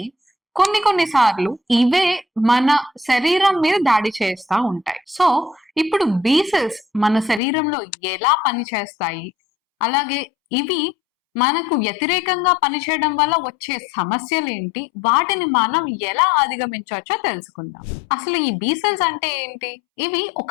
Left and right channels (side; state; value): right; drops out; at 7.4 s